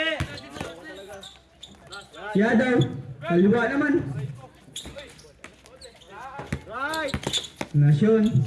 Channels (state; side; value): identical; both; correlation 1.00